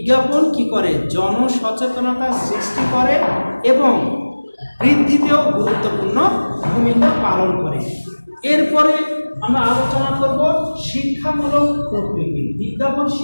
কি করে? জনসচেতনতা সৃষ্টি করে এবং বৃদ্ধিতেও গুরুত্বপূর্ণ ভূমিকা পালন করে। এরপরে আমরা আলোচনা করব শিক্ষামূলক প্রকৃতি। বিজ্ঞাপন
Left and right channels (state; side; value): inverted; both; correlation -1.00